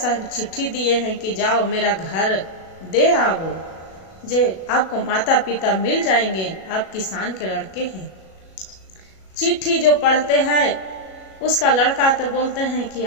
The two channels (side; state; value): right; late; 37 ms